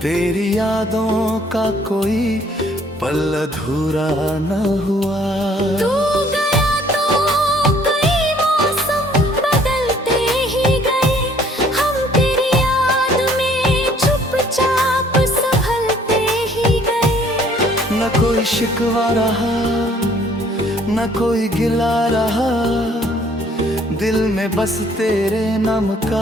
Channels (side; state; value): both; normal; correlation 0.60